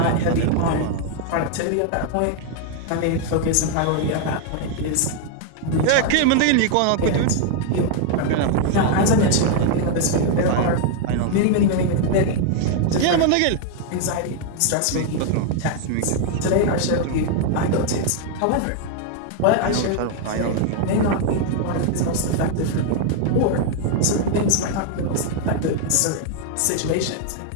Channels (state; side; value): different; both; correlation 0.00